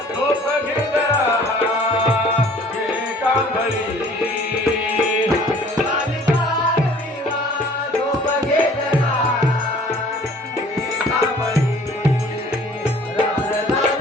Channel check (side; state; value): both; normal; correlation 0.52